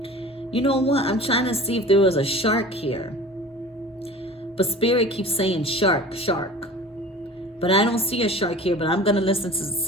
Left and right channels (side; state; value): both; normal; correlation 0.41